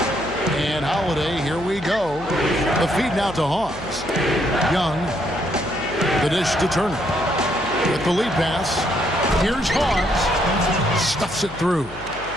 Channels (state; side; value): noise; left; hum, 18 dB below the sound